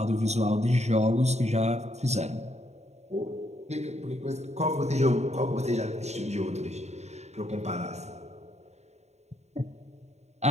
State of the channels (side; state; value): left; late; 0.32 ms